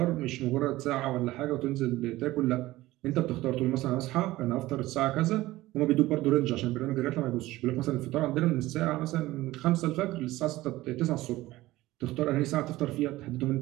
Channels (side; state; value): left; quieter; 17.5 dB